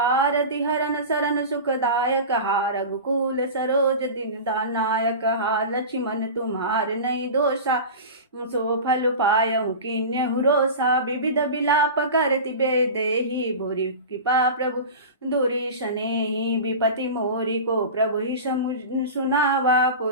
हरन सरन सुखदायक हा रघुकुल सरोज दीनदानायक। हा लक्ष्मण तुम्हार नहीं दोषा सो फल पायहु किन्यहु रोषा। विविध विलाप करति बेदेहि भूरि कृपा प्रभु दूरी सनेहि। विपति मोरी को प्रभु ही सुनावा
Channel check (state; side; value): inverted; both; correlation -0.30